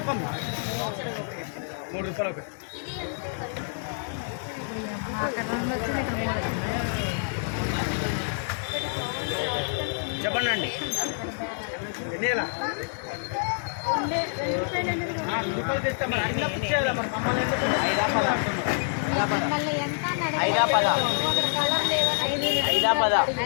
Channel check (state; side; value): silent; right; 60 dB below the other